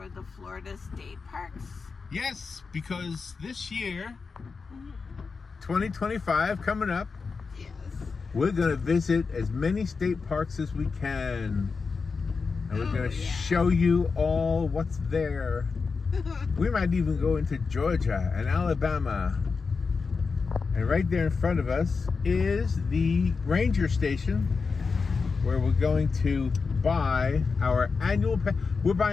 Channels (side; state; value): right; quieter; 4.8 dB